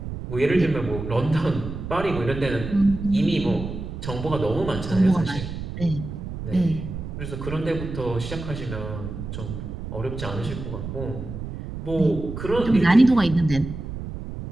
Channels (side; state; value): right; noise; rumble, 8 dB below the sound